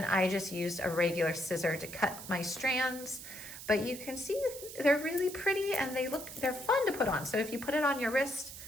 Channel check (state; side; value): noise; right; hiss, 12 dB below the sound